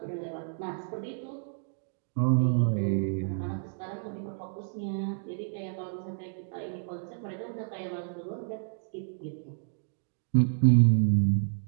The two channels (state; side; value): silent; left; digital silence